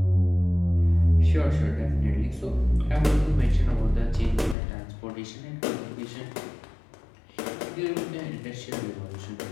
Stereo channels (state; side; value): drops out; right; at 4.5 s